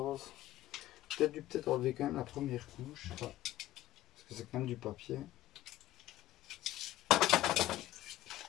Peut-être enlever quand même la première couche, parce que c'est quand même du papier.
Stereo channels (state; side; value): quieter; right; 14.8 dB